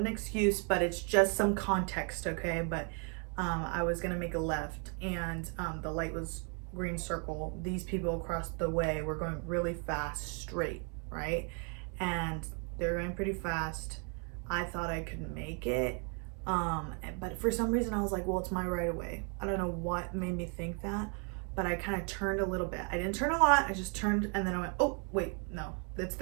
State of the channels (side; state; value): left; quieter; 39.2 dB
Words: excuse, but it's just some context, okay? But I was gonna make a left and the light was green circle. These people across the way were going really fast straight, right? And they're going pretty fast. I thought I could make it, but for some reason I was like, well, it's my right of way. I don't know what made me think that, but I kind of turned a little bit. I didn't turn a lot, I just turned, and then I went, oh wait, no, that's